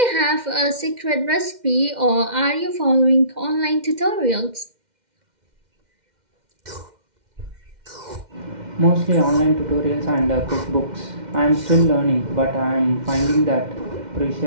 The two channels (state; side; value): late; left; 2.1 ms